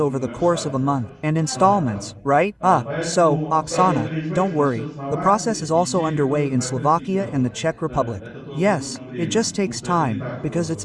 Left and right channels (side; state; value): both; identical; correlation 1.00